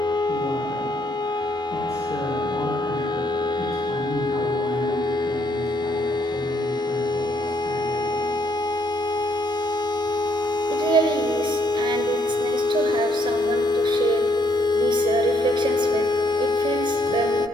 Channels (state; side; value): normal; both; correlation 0.71